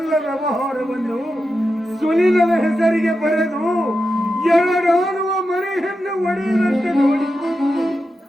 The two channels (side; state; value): both; normal; correlation 0.89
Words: ವ್ಯವಹಾರವನ್ನು ಸುನಿಲನ ಹೆಸರಿಗೆ ಬರೆದು ಎರಡಾಡುವ ಮನೆಯನ್ನು ಒಡೆಯುವಂತೆ ನೋಡಿ.